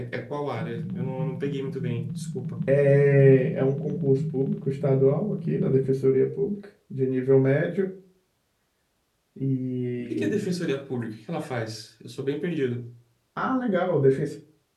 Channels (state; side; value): identical; both; correlation 1.00